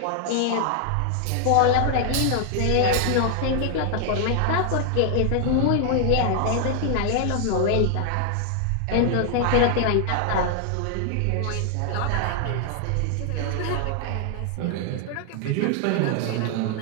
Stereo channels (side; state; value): both; different; correlation 0.00